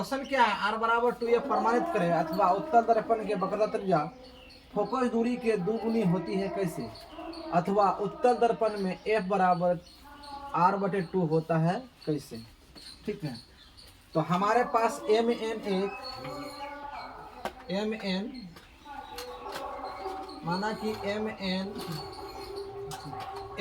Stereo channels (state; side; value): identical; both; correlation 1.00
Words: क्या है, R बराबर 2F प्रमाणित करें अथवा उत्तल दर्पण के वक्रता त्रिज्या फोकस दूरी के दुगुनी होती है कैसे, अथवा उत्तल दर्पण में F बराबर R/2 होता है कैसे। ठीक है, तो हमारे पास Mn माना कि Mn